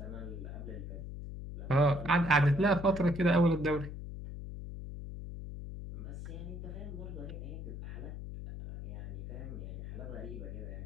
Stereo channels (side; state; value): left; noise; hum, 8 dB below the sound